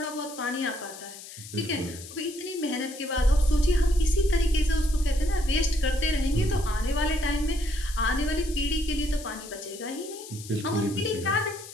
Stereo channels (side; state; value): left; noise; hiss, 14 dB below the sound